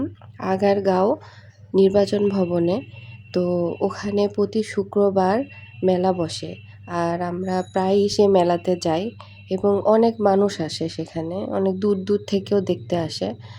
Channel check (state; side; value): identical; both; correlation 1.00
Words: আগারগাঁও নির্বাচন ভবনে। তো ওখানে প্রতি শুক্রবার মেলা বসে। আর আমরা প্রায়ই সে মেলাতে যাই এবং অনেক মানুষ আসে সেখানে। অনেক দূর দূর থেকেও দেখতে আসে।